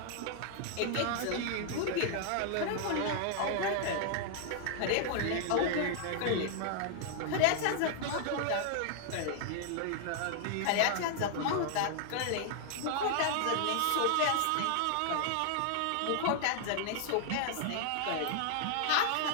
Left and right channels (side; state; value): both; different; correlation 0.00